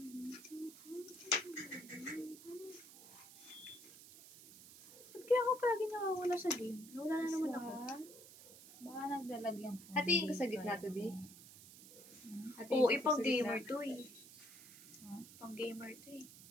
Ba't kaya ako palagi nakawala sa game? Nawala na naman ako. Baka nagdalag yung phone. Hatiin ko sa gitna to, B. Oo, ipang gamer to eh. Pang gamer to eh.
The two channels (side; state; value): right; noise; hiss, 18 dB below the sound